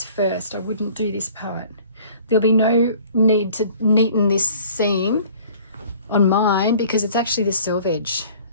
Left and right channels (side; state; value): both; inverted; correlation -0.51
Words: first. I wouldn't do this part. There'll be no need to neaten this seam on mine because it's actually the selvage.